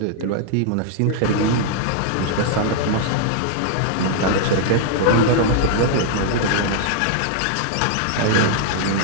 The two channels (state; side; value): different; both; correlation 0.00